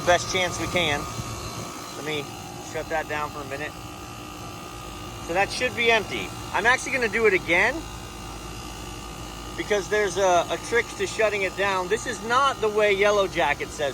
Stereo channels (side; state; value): both; identical; correlation 1.00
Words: best chance we can. Let me shut that down for a minute. So that should be empty. I'm actually gonna do it again, because there's a trick to shutting it down. This is not the way Yellow Jacket